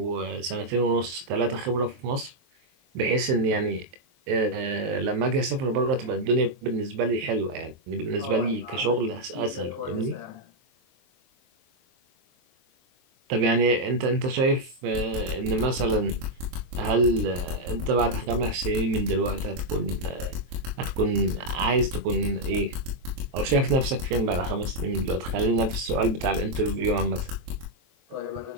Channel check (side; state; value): left; late; 23 ms